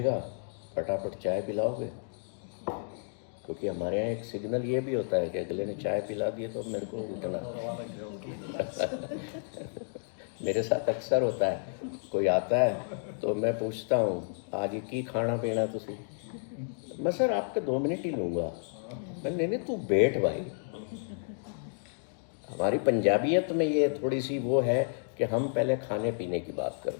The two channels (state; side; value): silent; right; digital silence